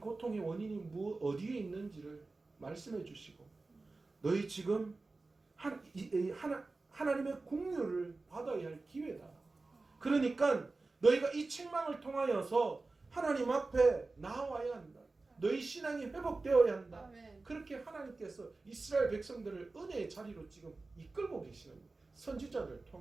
원인이 어디에 있는지를 말씀해 주시고 너희 지금 하나님의 공유를 받아야 할 기회다. 그러니까 너희가 이 책망을 통하여서 하나님 앞에 나와야 한다. 너희 신앙이 회복되어야 한다. 아멘. 그렇게 하나님께서 이스라엘 백성들을 은혜의 자리로 지금 이끌고 계시는 거예요. 선지자를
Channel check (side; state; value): left; quieter; 3.5 dB